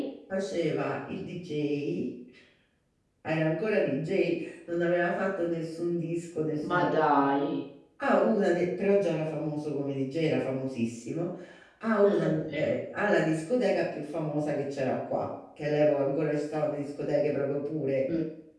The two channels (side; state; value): both; identical; correlation 1.00